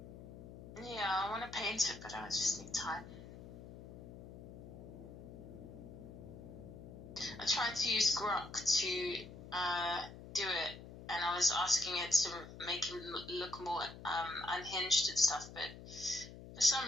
Yeah, I want to paint it, but I just need time. I tried to use Grok to do it, and I was asking it to make him look more unhinged and stuff, but for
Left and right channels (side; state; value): left; noise; hum, 14 dB below the sound